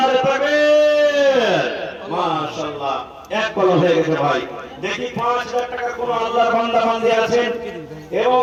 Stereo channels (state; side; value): identical; both; correlation 1.00